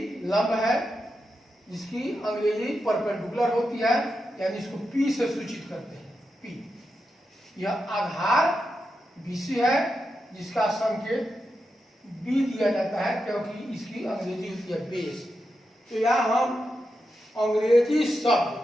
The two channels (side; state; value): both; normal; correlation 0.88